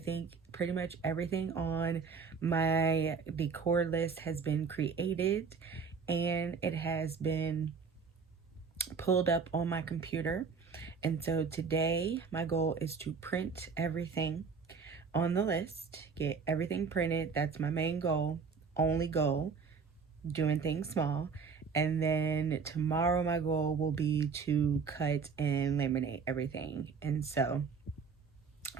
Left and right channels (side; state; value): left; quieter; 5.4 dB